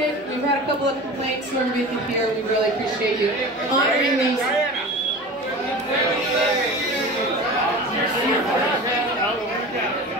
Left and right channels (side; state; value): both; normal; correlation 0.34